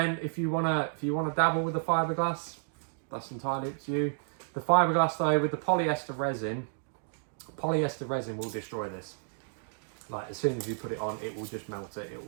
if you wanna dabble with the fiberglass, that's entirely up to you. The fiberglass though, with the polyester resin will destroy this. Like, as soon as you put it on, it will just melt it. It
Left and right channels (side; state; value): left; silent; digital silence